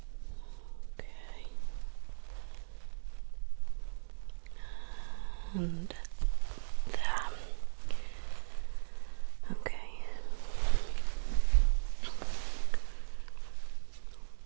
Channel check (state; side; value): silent; left; 53 dB below the other